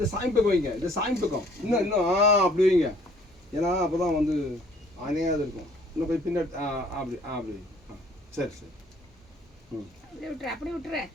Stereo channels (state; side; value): normal; both; correlation 0.58